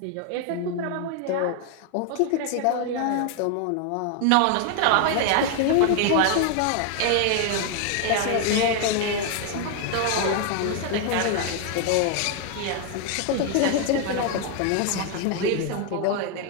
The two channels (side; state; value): both; different; correlation 0.00